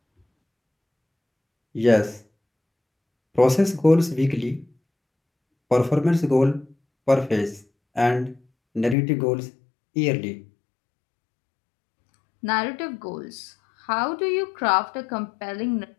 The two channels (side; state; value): right; drops out; at 9.0 s